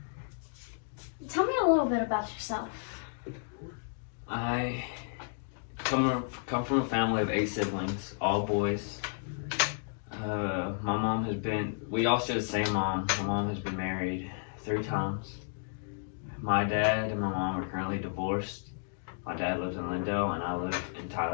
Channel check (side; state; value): right; silent; digital silence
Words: Tell me a little bit about yourself. I come from a family of 8 siblings, all boys. My mom has been, we all share the same mom. My mom has been married 3 times. My dad and my mom are currently divorced. My dad lives in Lindale and I live in